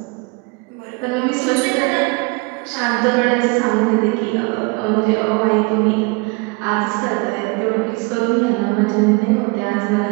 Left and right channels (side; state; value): left; quieter; 28.5 dB